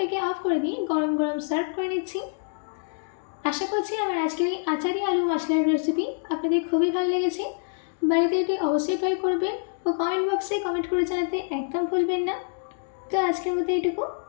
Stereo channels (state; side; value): silent; right; digital silence